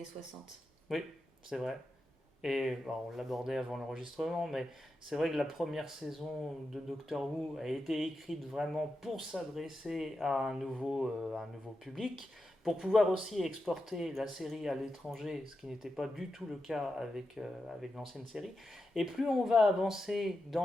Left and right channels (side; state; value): both; normal; correlation 0.89